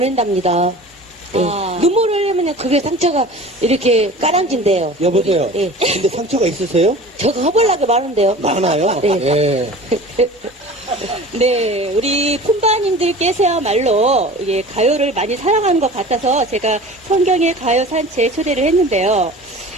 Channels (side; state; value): both; normal; correlation 0.40